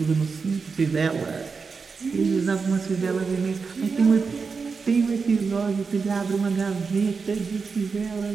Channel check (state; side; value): quieter; left; 5.0 dB